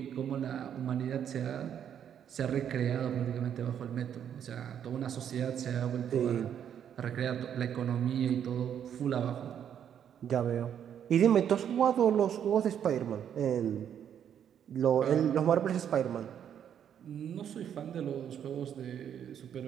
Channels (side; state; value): left; quieter; 9.1 dB